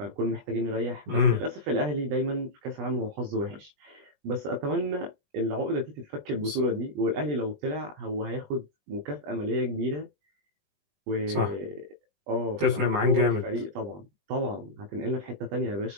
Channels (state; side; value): late; left; 20 ms